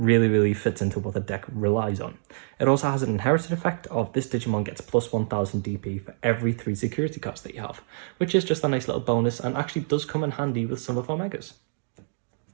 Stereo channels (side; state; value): left; silent; digital silence